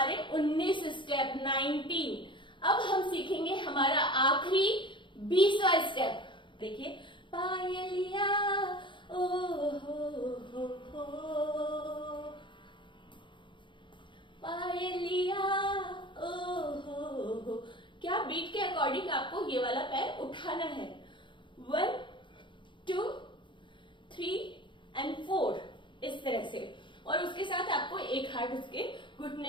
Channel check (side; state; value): right; late; 0.23 ms